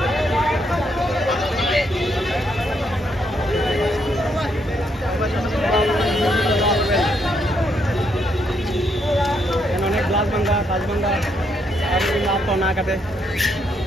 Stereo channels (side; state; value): both; normal; correlation 0.75